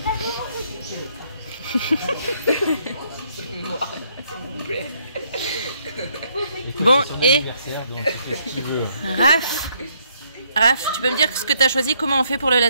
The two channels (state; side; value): inverted; both; correlation -0.70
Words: Bon, et Raph, tu peux me dire ce que tu as choisi? Comment on fait pour le